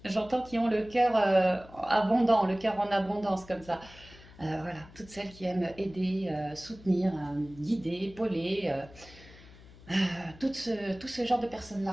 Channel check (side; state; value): left; noise; hum, 21 dB below the sound